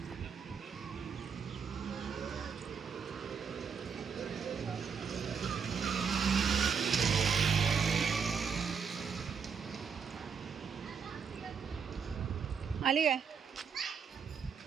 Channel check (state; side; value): quieter; left; 6.3 dB